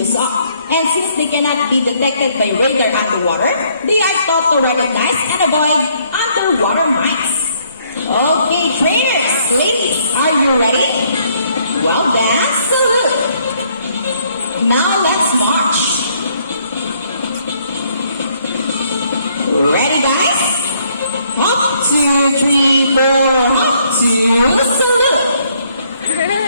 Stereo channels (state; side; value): inverted; both; correlation -0.68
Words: of. And since they cannot be detected by radar underwater, they are taught to recognize and avoid underwater mines. Okay, trainers, ladies, are you ready? Well, that's the look. Now let's march. Ready, guys? Hop, 2, 3, 4, hop, 2, salute.